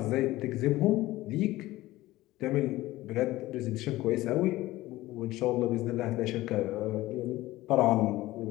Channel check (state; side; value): quieter; right; 17.4 dB